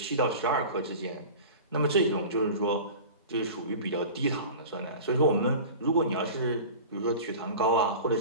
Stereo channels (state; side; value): inverted; both; correlation -0.36